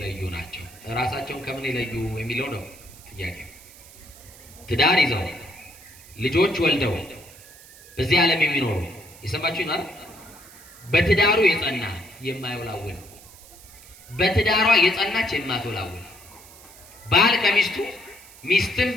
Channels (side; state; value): right; noise; hiss, 21 dB below the sound